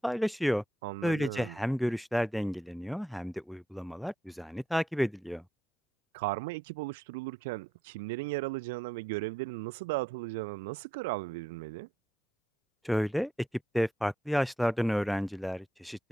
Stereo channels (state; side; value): normal; both; correlation 0.78